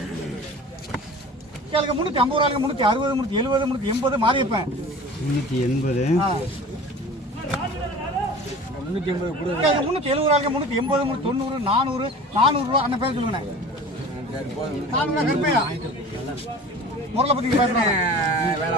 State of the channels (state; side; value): normal; both; correlation 0.40